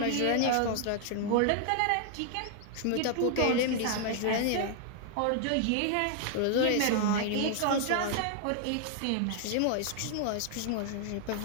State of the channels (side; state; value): both; different; correlation 0.00